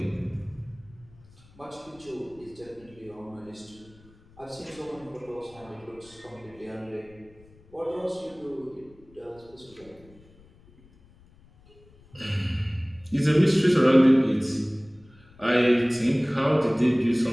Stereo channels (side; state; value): left; noise; rumble, 26 dB below the sound